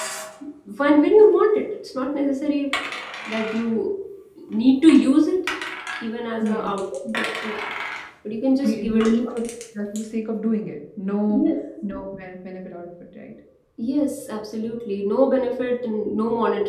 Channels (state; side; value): identical; both; correlation 1.00